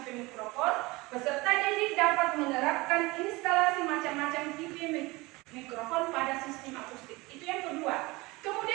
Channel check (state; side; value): quieter; left; 22.8 dB